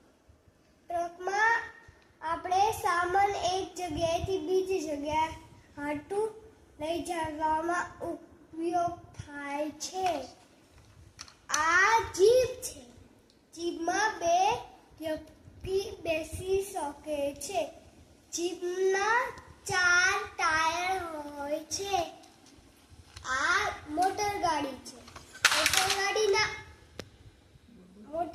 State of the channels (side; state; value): both; identical; correlation 1.00